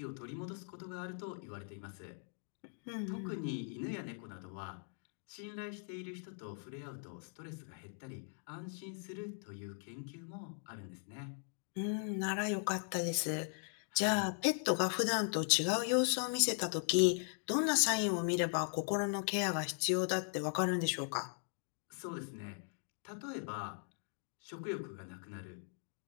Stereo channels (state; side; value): silent; right; 52 dB below the other